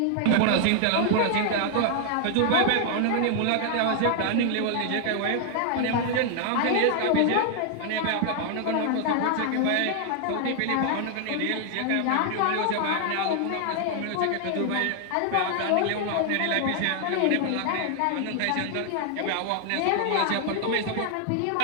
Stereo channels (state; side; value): different; both; correlation 0.00